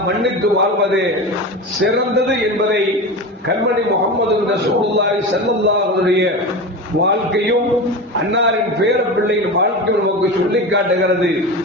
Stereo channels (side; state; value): both; normal; correlation 0.26